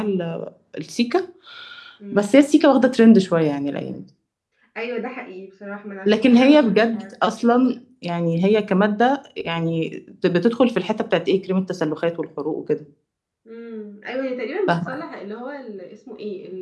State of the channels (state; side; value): identical; both; correlation 1.00